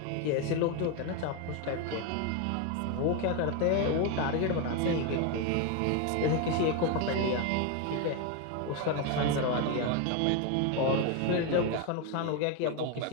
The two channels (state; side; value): different; both; correlation 0.02